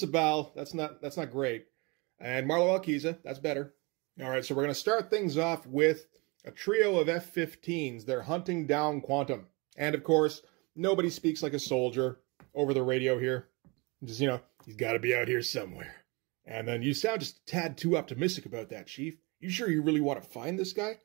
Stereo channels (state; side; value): quieter; left; 28.1 dB